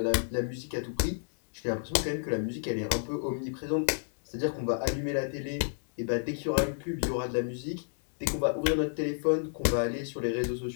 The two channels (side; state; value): right; silent; digital silence